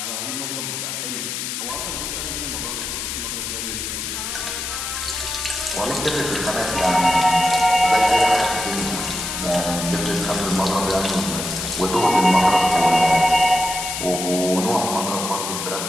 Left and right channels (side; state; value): left; noise; hiss, 4 dB below the sound